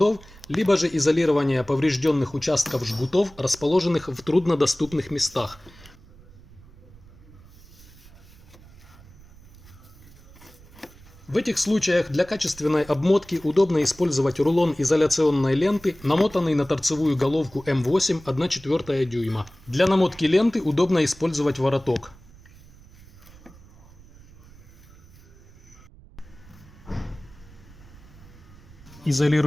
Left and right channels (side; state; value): right; noise; rumble, 22 dB below the sound